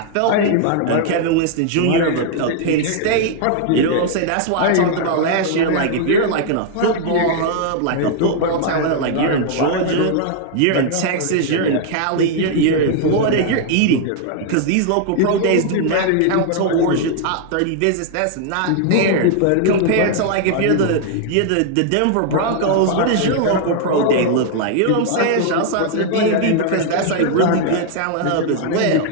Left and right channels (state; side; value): different; both; correlation 0.00